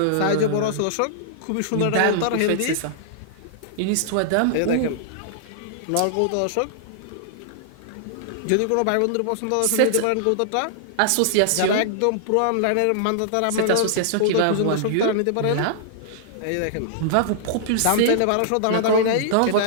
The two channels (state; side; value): different; both; correlation -0.01